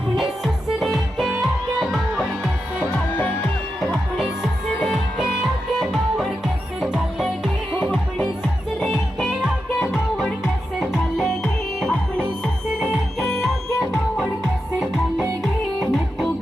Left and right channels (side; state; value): both; normal; correlation 0.88